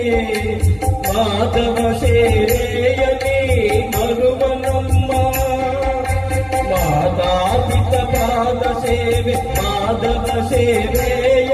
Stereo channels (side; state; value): both; identical; correlation 1.00